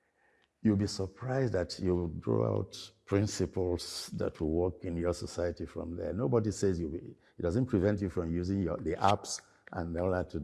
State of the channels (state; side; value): identical; both; correlation 1.00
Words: You'll be surprised that you draw out principles that will work in your society from there. Nobody says it doesn't prevent you from using the apps and all that to